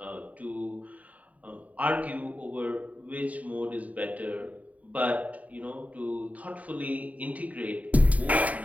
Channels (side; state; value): left; late; 0.071 ms